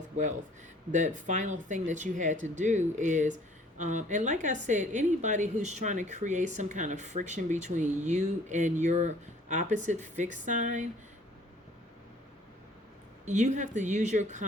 wealth. The final thing that you had to do is, and like I said, anybody who's trying to create some kind of friction between you and your opposite fixed sign, you have to use your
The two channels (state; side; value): normal; both; correlation 0.55